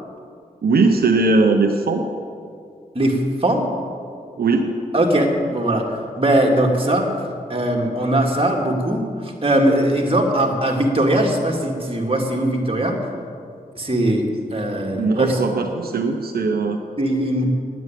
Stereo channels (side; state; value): both; normal; correlation 0.62